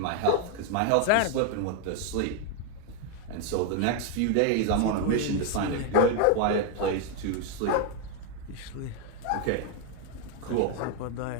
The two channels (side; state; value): both; different; correlation 0.01